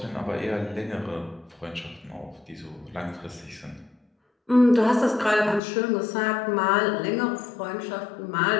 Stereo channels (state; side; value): drops out; right; at 5.6 s